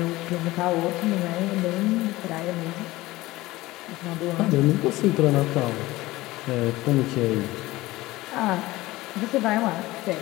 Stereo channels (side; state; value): right; quieter; 18.7 dB